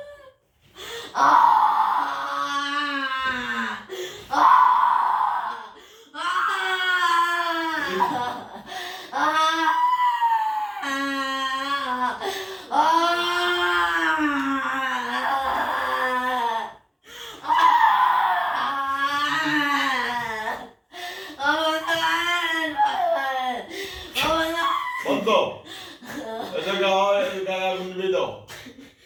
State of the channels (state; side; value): identical; both; correlation 1.00